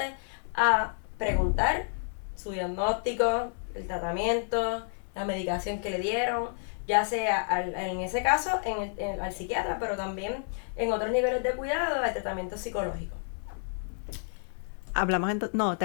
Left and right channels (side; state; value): right; silent; digital silence